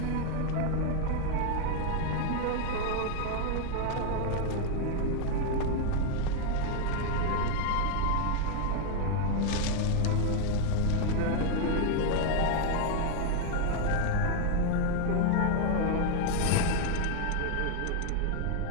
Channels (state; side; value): different; both; correlation 0.01